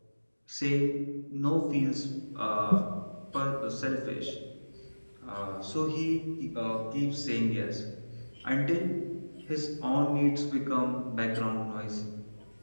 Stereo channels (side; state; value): both; inverted; correlation -1.00